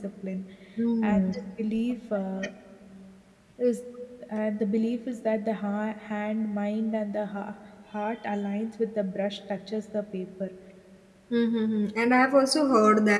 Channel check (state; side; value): identical; both; correlation 1.00